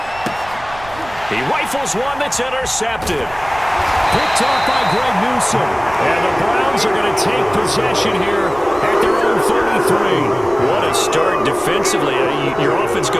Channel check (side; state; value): right; noise; rumble, 18 dB below the sound